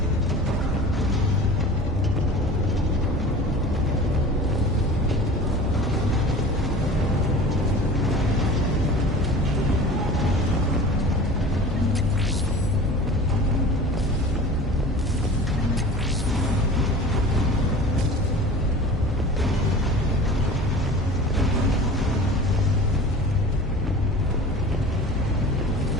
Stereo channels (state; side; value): normal; both; correlation 0.39